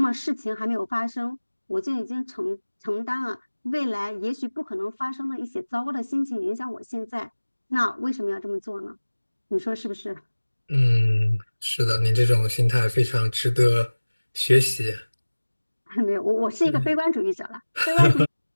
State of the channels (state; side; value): inverted; both; correlation -1.00